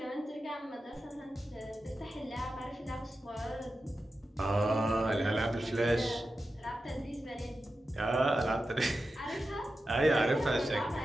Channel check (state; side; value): normal; both; correlation 0.91